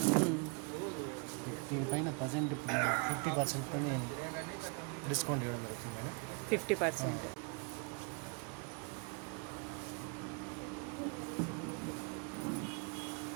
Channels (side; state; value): left; quieter; 35.0 dB